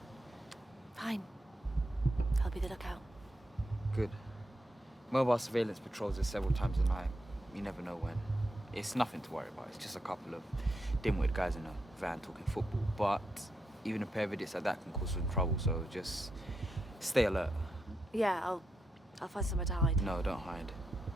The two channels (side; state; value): both; normal; correlation 0.83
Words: Fine. I'll be the lookout. Good. Mobile surveillance patrols us several times a night. You never know when. It's nothing to worry about. It's just a couple of dim-witted guys in a van talking football. But even a pair of idiots like that can cause some trouble, so just stay alert. Yeah, I'll find somewhere to hide. No, don't hide.